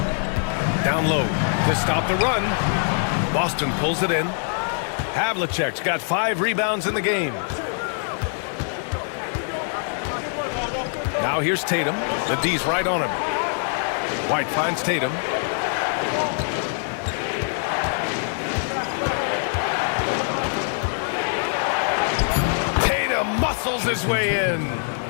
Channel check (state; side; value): silent; right; 63 dB below the other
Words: Down low to stop the run. Boston pulls it in. Havlicek's got 5 rebounds in the game. Now here's Tatum. The D's right on him. White finds Tatum. Muscles his way in.